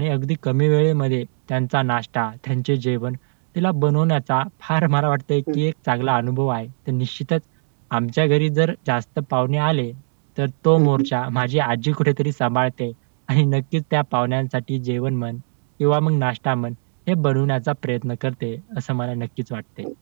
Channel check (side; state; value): left; silent; digital silence